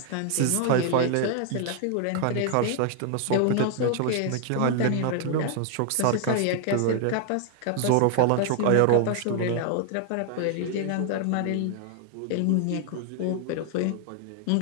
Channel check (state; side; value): different; both; correlation 0.00